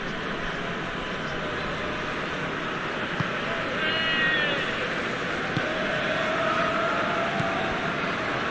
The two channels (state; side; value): noise; left; rumble, 17 dB below the sound